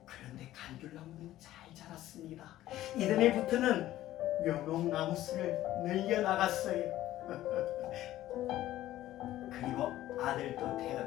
그런데 감귤나무는 잘 자랐습니다. 이듬해부터는 묘목나무수를 늘려나갔어요. 그리고 아들도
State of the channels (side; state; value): right; quieter; 14.3 dB